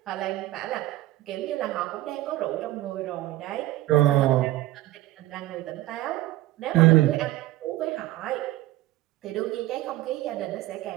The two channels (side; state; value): left; quieter; 16.3 dB